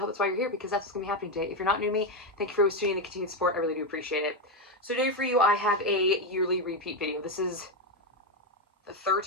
that's why you're here, because that's what's going to be happening today. If you're not new to me, thank you for always tuning in and continued support. I really do appreciate it. So today for you, I have a yearly repeat video. This is the third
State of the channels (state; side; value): normal; both; correlation 0.08